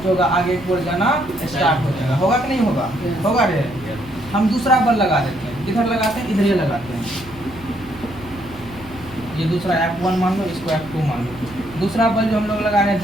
जो होगा आगे की ओर जाना स्टार्ट हो जाएगा, होगा कि नहीं होगा, होगा रे। हम दूसरा बल लगा देते हैं, किधर लगाते हैं, इधर ही लगाते हैं। ये दूसरा F1 मान लो, इसको F2 मान लो। दूसरा बल जो हम लोग लगा रहे हैं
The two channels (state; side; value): noise; right; hum, 19 dB below the sound